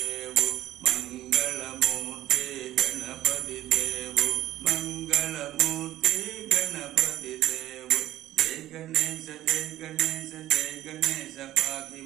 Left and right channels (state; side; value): quieter; left; 14.0 dB